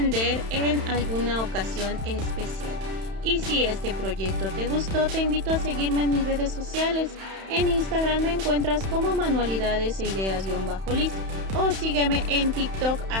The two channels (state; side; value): late; left; 31 ms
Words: en alguna ocasión especial. Y si este proyecto te gustó, te invito a seguirme en mis redes sociales. En Instagram me encuentras como manualidades e ideas-liz o sígueme en TikTok